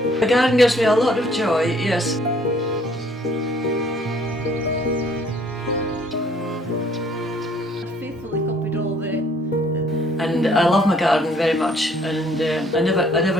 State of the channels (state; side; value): normal; both; correlation 0.61